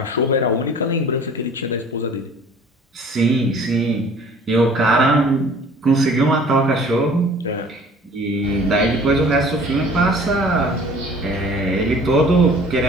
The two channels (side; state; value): both; normal; correlation 0.49